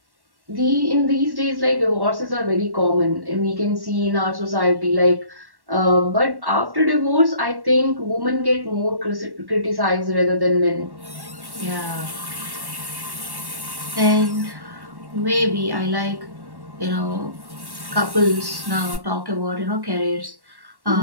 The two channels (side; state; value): left; late; 1.1 ms